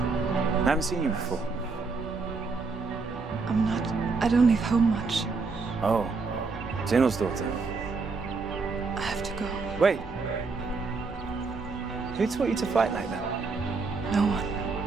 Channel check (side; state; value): left; quieter; 4.3 dB